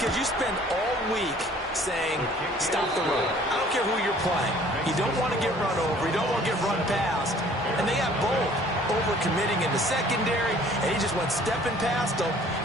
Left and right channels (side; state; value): both; normal; correlation 0.54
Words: you spend all week saying, stop the run. I don't care who you're playing. You don't want to get run over. You don't want to get run past. And they have both. Overcommitting in the secondary, and he just went stepping past them